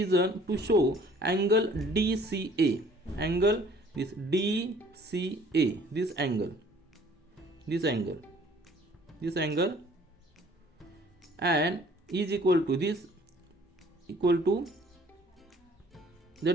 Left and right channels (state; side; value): normal; both; correlation 0.55